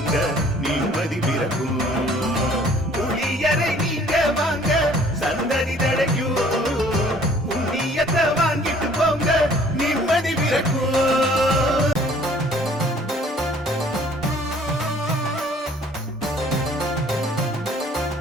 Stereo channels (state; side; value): normal; both; correlation 0.56